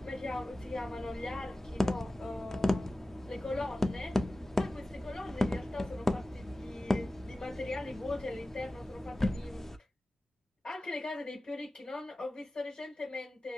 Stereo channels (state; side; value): normal; both; correlation 0.96